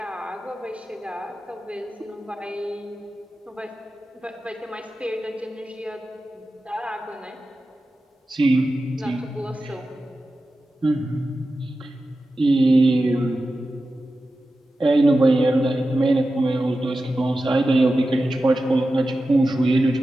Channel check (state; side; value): normal; both; correlation 0.93